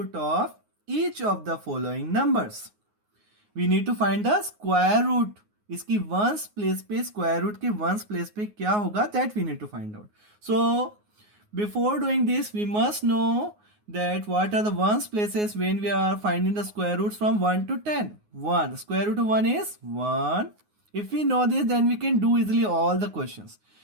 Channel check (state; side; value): late; left; 9.5 ms